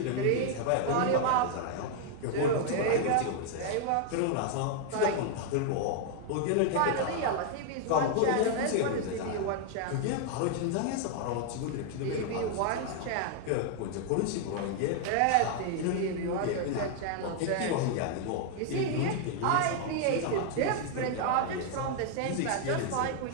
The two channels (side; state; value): both; different; correlation 0.00